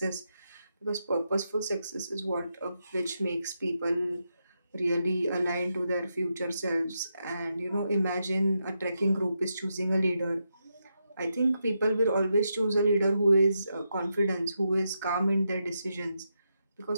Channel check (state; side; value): inverted; both; correlation -0.84